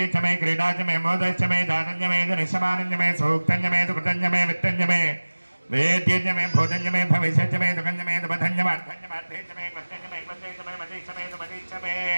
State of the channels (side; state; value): both; inverted; correlation -1.00